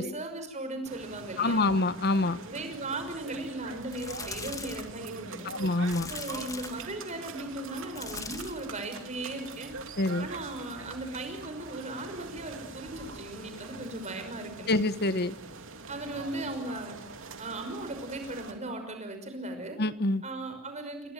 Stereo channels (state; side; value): normal; both; correlation 0.35